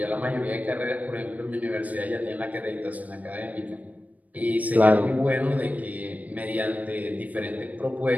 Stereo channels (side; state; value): left; late; 0.074 ms